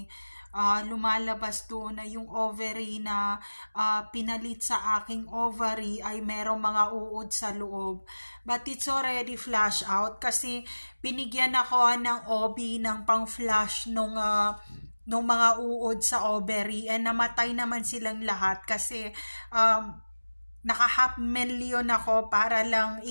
lumalabas doon na yung ovary na pinalit sa aking ovary ay merong mga uod sa loob. But it's already flush out kasi binigyan ako ng OB ng pang-flush nung mga uod sa ovary, and namatay naman silang lahat kasi naka 500,000 ako para lang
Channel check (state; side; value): inverted; both; correlation -1.00